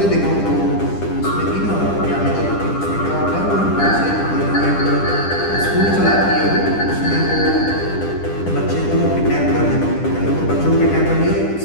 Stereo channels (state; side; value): late; right; 10 ms